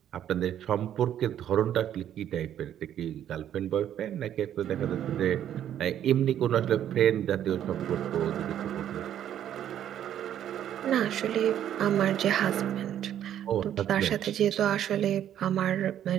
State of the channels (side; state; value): left; quieter; 10.6 dB